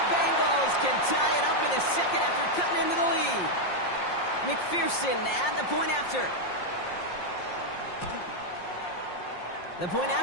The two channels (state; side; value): late; right; 5.6 ms